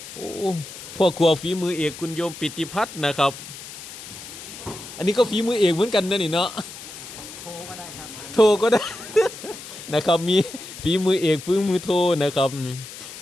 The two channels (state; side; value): noise; left; hiss, 13 dB below the sound